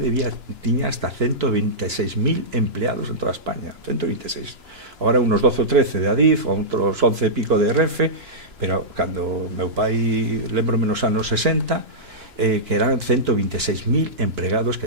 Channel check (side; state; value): left; late; 2.9 ms